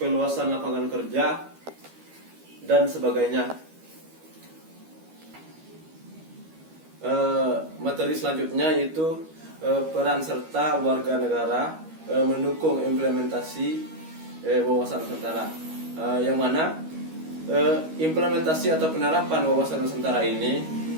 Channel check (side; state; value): left; late; 13 ms